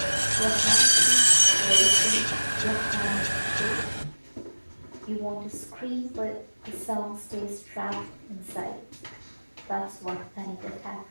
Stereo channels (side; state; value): both; inverted; correlation -1.00